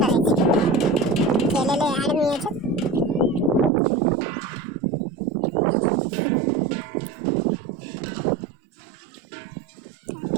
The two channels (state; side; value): drops out; left; at 3.7 s